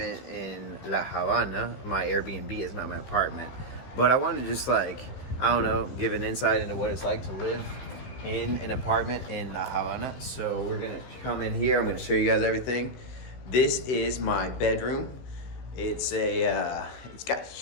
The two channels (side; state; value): right; late; 15 ms